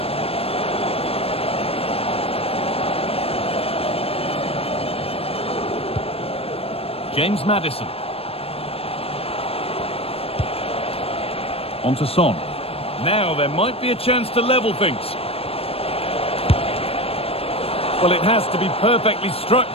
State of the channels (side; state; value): right; late; 0.28 ms